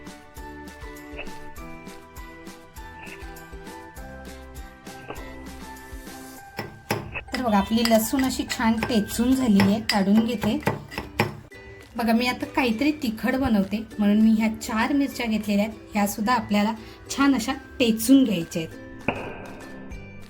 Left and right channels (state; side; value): identical; both; correlation 1.00